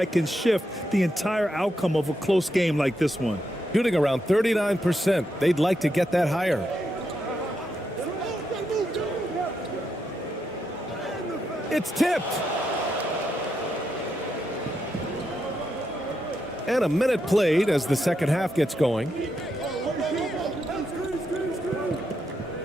can shift the entire outcome of a close game like this one. Shooting around 39%. They'd like to get that higher. It's tipped. And a minute played as the second half gets going.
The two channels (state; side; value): normal; both; correlation 0.82